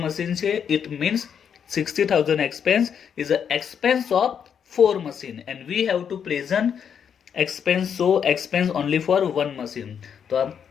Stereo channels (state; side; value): quieter; right; 7.7 dB